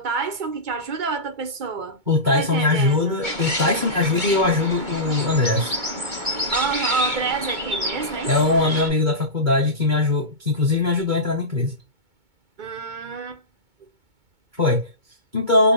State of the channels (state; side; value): late; left; 2.2 ms